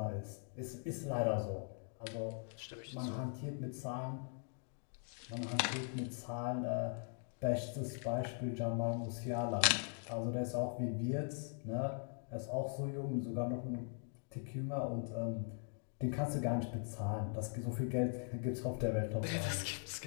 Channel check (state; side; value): silent; right; 50 dB below the other